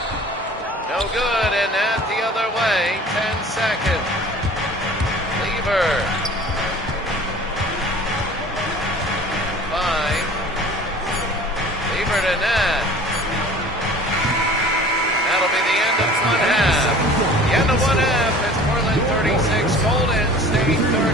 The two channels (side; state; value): both; normal; correlation 0.45